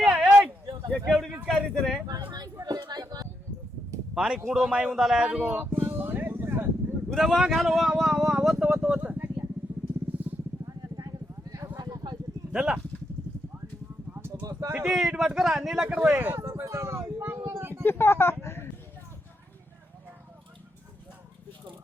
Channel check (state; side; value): normal; both; correlation 0.81